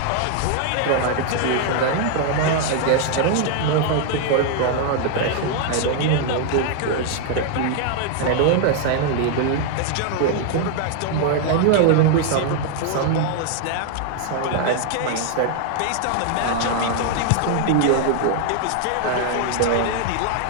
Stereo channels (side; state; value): both; different; correlation 0.00